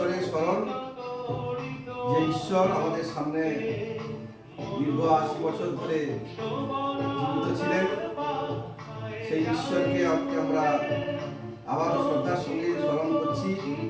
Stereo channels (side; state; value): both; identical; correlation 1.00